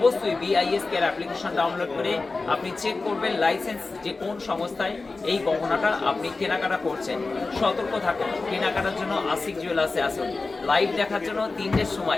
BISK এর অ্যাপ্লিকেশন ডাউনলোড করে আপনি চেক করবেন লাইসেন্স যে কোন সংস্থায় এই গহনাটা আপনি কেনাকাটা করছেন। সতর্ক থাকুন, কেনাকাটার জন্য আশিক জুয়েলার্সে আসুন। লাইভ দেখার জন্য 3টের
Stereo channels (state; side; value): quieter; right; 3.7 dB